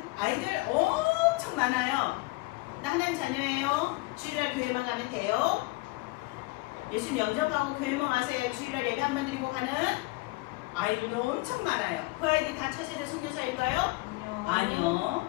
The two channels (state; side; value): quieter; right; 22.8 dB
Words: 아이들 엄청 많아요. 나 하나님 자녀예요. 주일날 교회만 가면 돼요. 예수님 영접하고 교회만 와서 주일날 예배 한번 드리고 가는 아이들도 엄청 많아요. 그 아이들이 다 차세대 선교사일까요? 아니요.